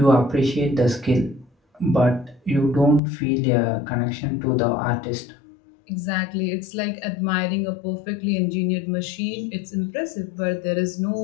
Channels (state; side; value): drops out; right; at 3.0 s